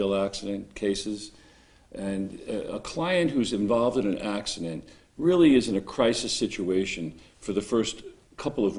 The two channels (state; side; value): identical; both; correlation 1.00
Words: accident cases. And a client who's involved in an accident really is in a crisis situation for the first couple of